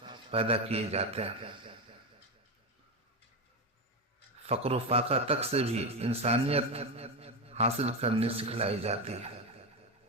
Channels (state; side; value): normal; both; correlation 0.13